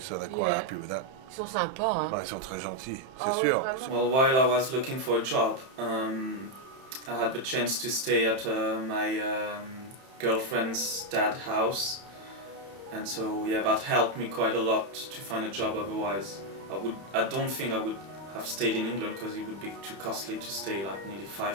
so they're quite happy with that. Ils sont sympas, hein? Ils sont très gentils, c'est sûr. Well, while I was looking for a job, I had the chance to stay at my girlfriend's dad's house, and so yeah, that helped me quite a lot to find a job. Otherwise, I don't think I would have stayed in England because it would be too costly to stay like nearly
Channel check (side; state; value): left; late; 31 ms